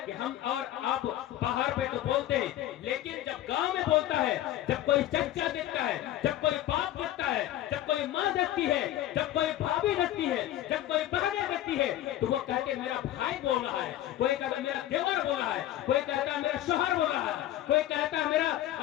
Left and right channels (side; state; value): right; quieter; 13.4 dB